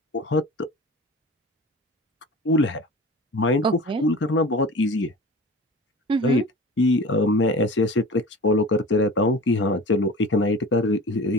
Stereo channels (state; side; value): normal; both; correlation 0.38